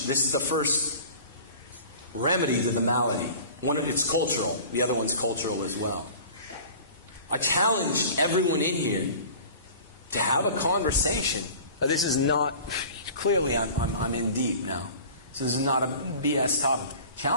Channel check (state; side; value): inverted; both; correlation -0.42